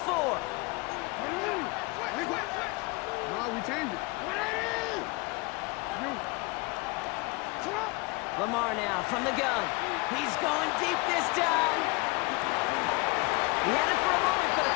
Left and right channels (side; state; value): right; quieter; 26.3 dB